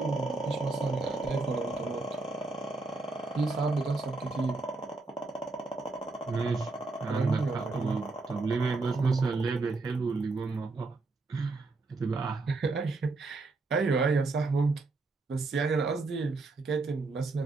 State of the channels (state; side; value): quieter; left; 3.6 dB